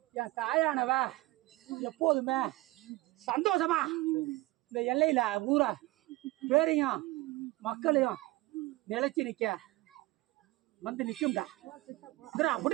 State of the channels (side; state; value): left; quieter; 19.9 dB